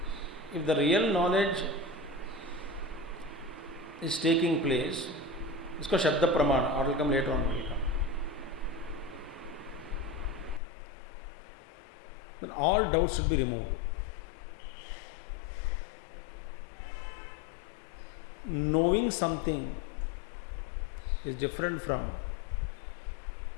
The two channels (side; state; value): right; drops out; at 10.6 s